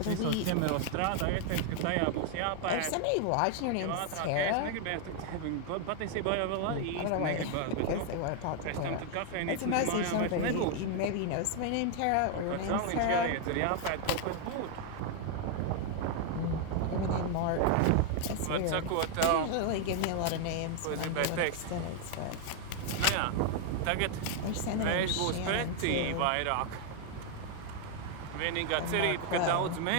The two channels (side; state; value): both; different; correlation 0.00